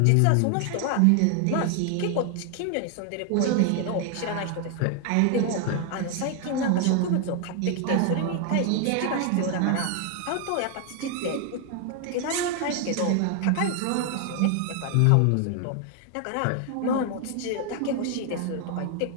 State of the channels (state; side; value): different; both; correlation 0.00